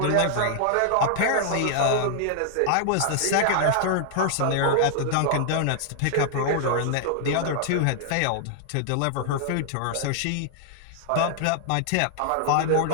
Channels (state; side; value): different; both; correlation -0.01